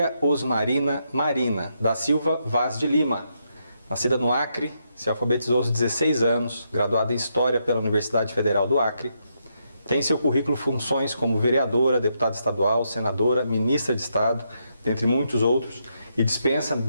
Osmarina Marina, da Silva Vaz de Lima. Nascida no Acre, se alfabetizou aos 16 anos, graduada em História pela Universidade Federal do Acre. Tem em seu currículo funções como vereadora, deputada estadual, senadora, ministra de Estado, dentre muitos outros, e dispensa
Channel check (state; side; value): inverted; both; correlation -0.80